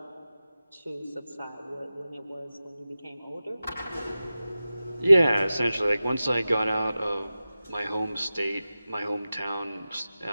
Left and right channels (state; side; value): inverted; both; correlation -0.95